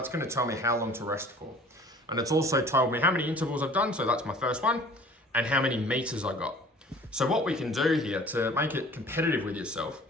going to tell me how long to rest for. And it's also told me how many intervals I've done, so that's my first one, and how many meters I got. So what we can do here to make it competitive with yourself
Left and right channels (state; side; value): normal; both; correlation 0.48